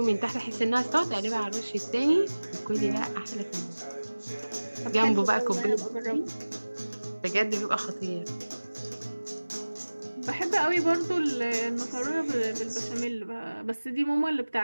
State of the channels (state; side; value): inverted; both; correlation -1.00